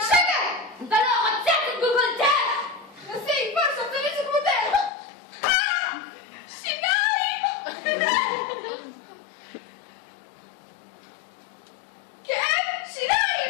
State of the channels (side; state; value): right; drops out; at 4.9 s